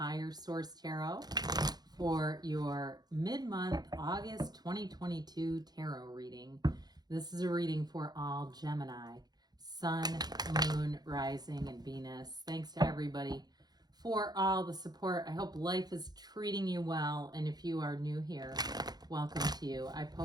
Source Tarot for your mid-month August 2022 tarot reading. This is a reading for all Gemini, Sun, Moon, Rising, and Venus. Thanks to everybody for all the support. I hope life is treating you well, and if you are new here, welcome to you. I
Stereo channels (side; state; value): left; late; 0.19 ms